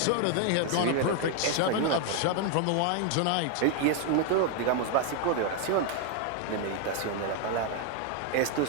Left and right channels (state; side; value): different; both; correlation 0.00